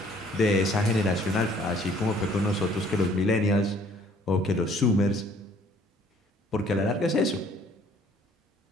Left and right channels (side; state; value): both; normal; correlation 0.59